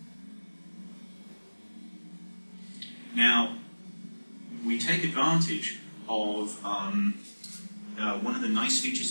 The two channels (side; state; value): both; inverted; correlation -1.00